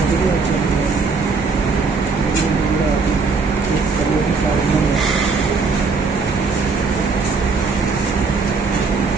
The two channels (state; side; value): quieter; left; 4.6 dB